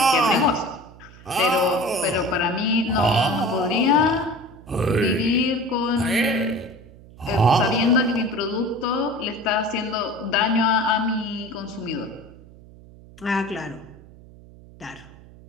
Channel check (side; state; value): right; noise; hum, 21 dB below the sound